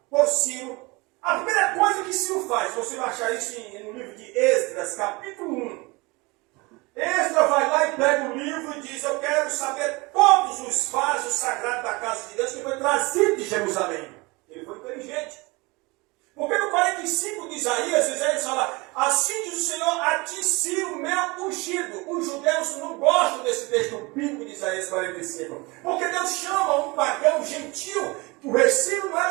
por Ciro, a primeira coisa que Ciro faz, você vai achar isso no livro de Esdras, capítulo 1. Esdras vai lá e pega o livro e diz: eu quero saber todos os vasos sagrados da casa de Deus que foi trazido de Jerusalém. Ele foi inteligente. Porque no 45 de Isaías fala, assim diz o Senhor, a ti sim o meu ungido. Os judeus não gostam desse texto bíblico de Isaías 45. Porque Deus chama um pagão gentil. O rei Ciro não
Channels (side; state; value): left; quieter; 25.1 dB